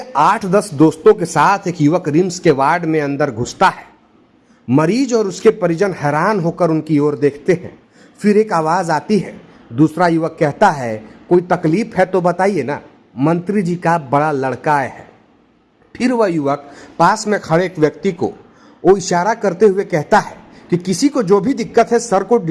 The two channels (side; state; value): both; identical; correlation 1.00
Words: 8-10 दोस्तों के साथ एक युवक रिम्स के वार्ड में अंदर घुसता है। मरीज और उसके परिजन हैरान होकर उनकी ओर देखते हैं। फिर एक आवाज आती है। दूसरा युवक कहता है, कोई तकलीफ है तो बताइए ना, मंत्री जी का बड़ा लड़का आया है। फिर वह युवक पास में खड़े एक व्यक्ति को वो इशारा करते हुए कहता है कि किसी को जो भी दिक्कत है सर को